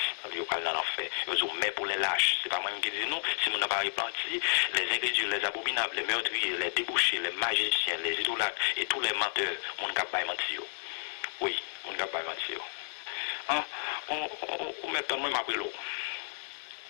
Mais pour les lâches, c'est pas moi qui dis non, si mon n'a pas repenti, les ingrédients, les abominables, les meurtriers, les débouchés, les magiciens, les idolâtres et tous les menteurs, mon cap pas mentir. Oui, mon cap pas mentir. On met pas moi après l'eau.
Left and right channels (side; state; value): right; silent; digital silence